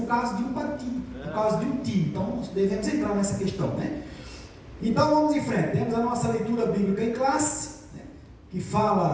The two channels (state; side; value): identical; both; correlation 1.00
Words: causa de um partido, por causa de um time. Então devemos entrar nessa questão, né? Então vamos em frente. Temos a nossa leitura bíblica em classe, né? Que